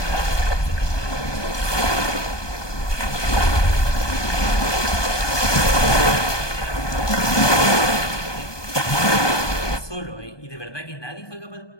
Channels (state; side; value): late; right; 1.2 ms